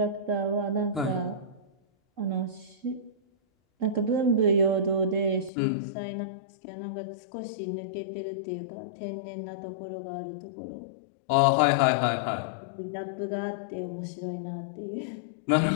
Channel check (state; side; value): drops out; right; at 5.5 s